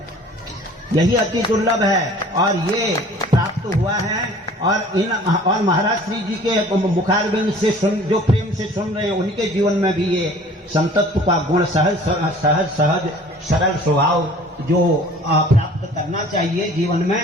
यही अति दुर्लभ है। और ये प्राप्त हुआ है। और महाराज श्री जी के मुखारबिंद से जो प्रेम से सुन रहे हैं, उनके जीवन में भी ये संतत्व का गुण, सहज सरल स्वभाव जो प्राप्त करना चाहिए जीवन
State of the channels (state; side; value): normal; both; correlation 0.49